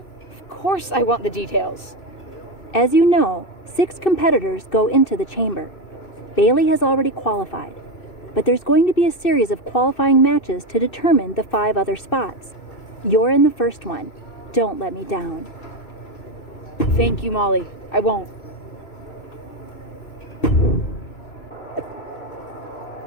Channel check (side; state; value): right; late; 2.6 ms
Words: Of course I want the details. As you know, 6 competitors go into the chamber. Bailey has already qualified, but there's going to be a series of qualifying matches to determine the 5 other spots. You're in the first one. Don't let me down. Thank you, Molly. I won't.